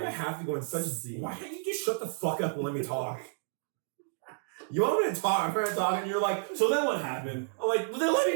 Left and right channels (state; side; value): silent; left; digital silence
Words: I have to go in such see? why can't you just shut the fuck up and let me talk? You want me to talk, I'm trying to talk, and you're like, so then what happened? I'm like, well, then let